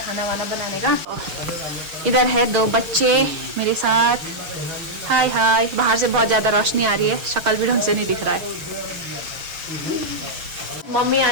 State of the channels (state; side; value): late; left; 6.5 ms